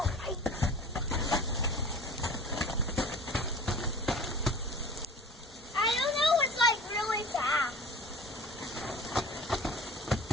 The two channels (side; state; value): both; normal; correlation 0.41